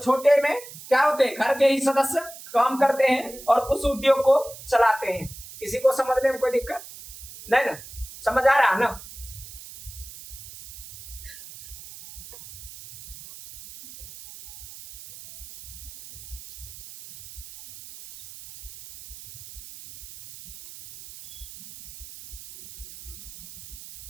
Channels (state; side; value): noise; right; hiss, 15 dB below the sound